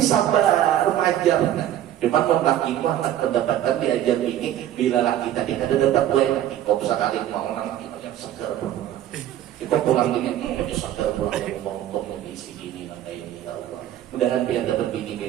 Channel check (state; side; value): quieter; left; 12.0 dB